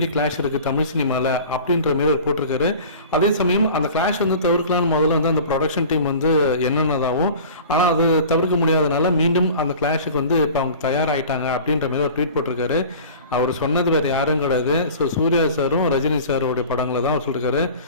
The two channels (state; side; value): inverted; both; correlation -0.41